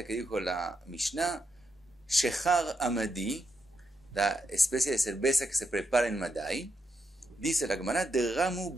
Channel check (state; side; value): normal; both; correlation 0.82